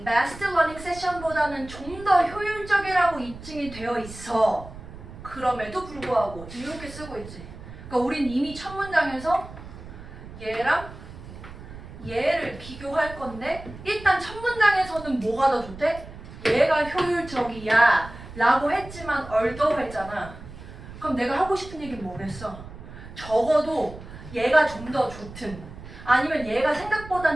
massed learning session보다는 좀 더 효율적이라고 입증이 되어 있어. 그럼에도 불구하고 지금 이렇게 쓰고 있지. 그러니까 우린 이미 첫 문장에서 얘랑 얘를 비교할 건데 일단 첫 문장에서는 뭐가 더 좋대? 얘가 효율적이야 라고 했지만 although 했잖아. 그럼 내가 하고 싶은 얘기는 뭐겠어? 적어도 얘가 좀 더 좋든 아니면 얘가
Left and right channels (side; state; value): right; noise; rumble, 15 dB below the sound